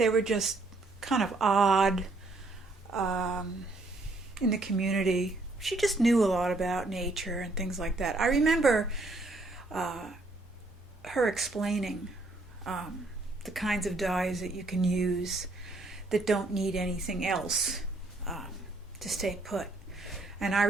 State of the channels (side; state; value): left; quieter; 3.0 dB